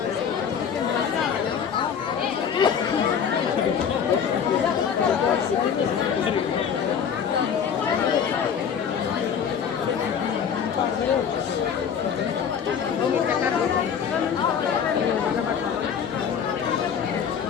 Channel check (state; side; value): quieter; right; 7.5 dB